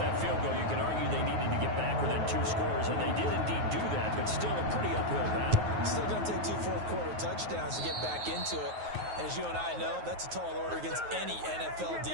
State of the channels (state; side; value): late; left; 9.4 ms